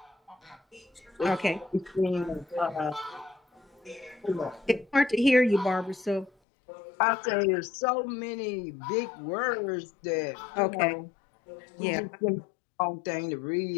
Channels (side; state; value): right; drops out; at 6.3 s